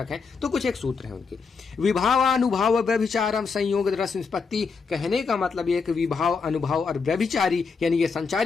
हैं। तो कुछ एक सूत्र है उनके, विभावानुभाव व्यभिचारम संयोग रस निष्पत्ति। कहने का मतलब यह कि विभाव, अनुभाव और व्यभिचारी यानी ये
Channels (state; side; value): quieter; right; 5.1 dB